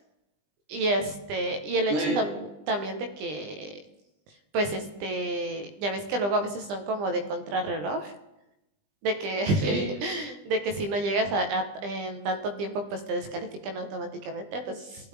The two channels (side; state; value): left; late; 20 ms